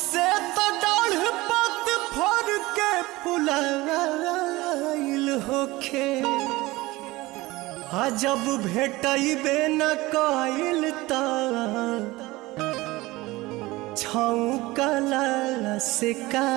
तो डाढ़ पत फर के फुलाइल होखे, जब भेटबे न कइल त छौकला से का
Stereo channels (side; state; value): left; quieter; 20.1 dB